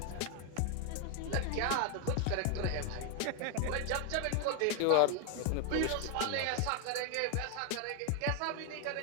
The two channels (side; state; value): both; different; correlation 0.00